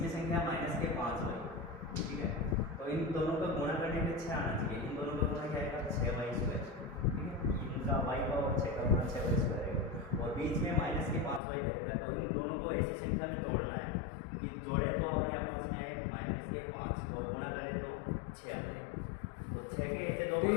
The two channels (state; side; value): drops out; right; at 11.4 s